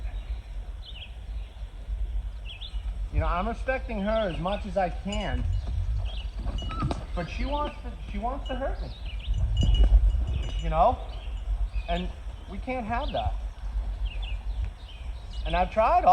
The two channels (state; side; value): identical; both; correlation 1.00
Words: you know, I'm respecting her as much as I can, but she wants to hurt me. You know? And we can't have that. And I've tried